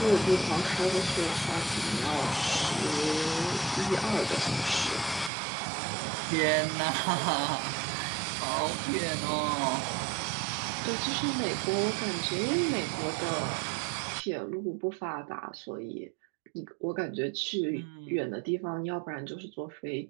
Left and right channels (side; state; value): left; drops out; at 5.3 s